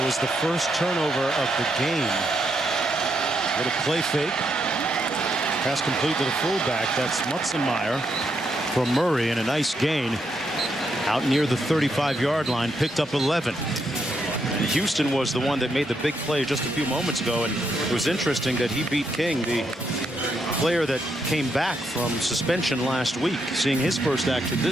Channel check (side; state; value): both; normal; correlation 0.79